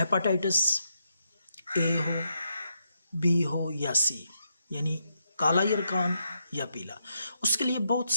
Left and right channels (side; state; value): both; inverted; correlation -0.80